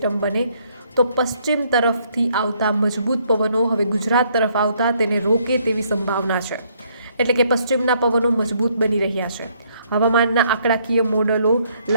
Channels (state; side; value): inverted; both; correlation -0.68